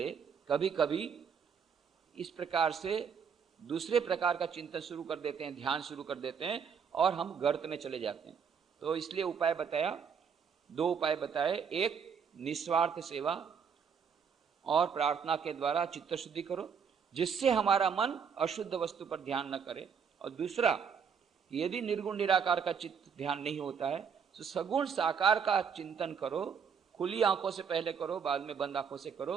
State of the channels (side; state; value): left; quieter; 6.7 dB